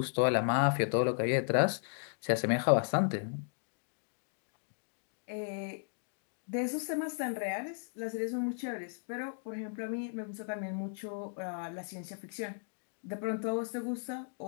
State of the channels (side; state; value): right; silent; digital silence